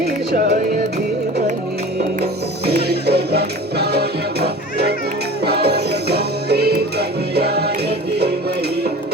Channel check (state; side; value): normal; both; correlation 0.39